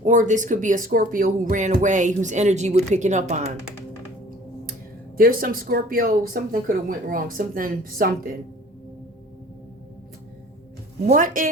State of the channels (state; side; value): normal; both; correlation 0.49